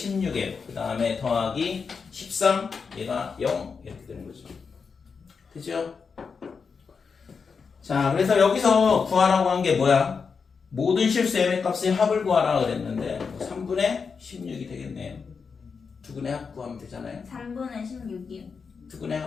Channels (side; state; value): right; quieter; 5.5 dB